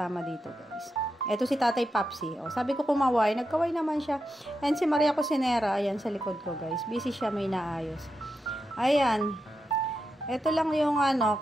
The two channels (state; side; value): normal; both; correlation 0.87